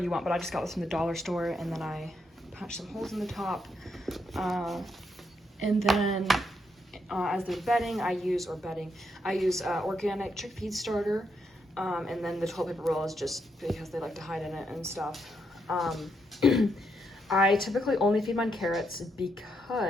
you want, but I just got this from the dollar store, and then I punch some holes in the top. And then as their bedding, I use organic chickpea starter, and then the toilet paper roll is just because they like to hide in it and stuff. I typically only feed mine carrots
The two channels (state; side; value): normal; both; correlation 0.79